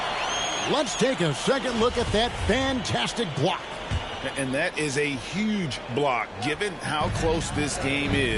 Let's take a second look at that fantastic block. And that is a huge block. Given how close this game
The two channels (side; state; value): both; identical; correlation 1.00